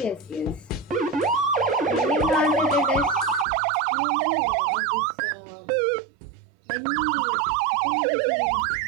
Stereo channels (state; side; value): drops out; left; at 3.5 s